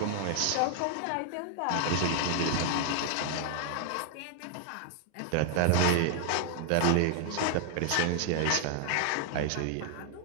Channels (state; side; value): different; both; correlation 0.00